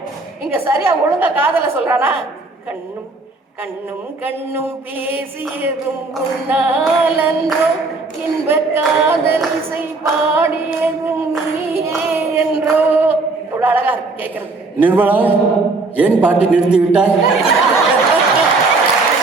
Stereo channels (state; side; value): quieter; left; 3.5 dB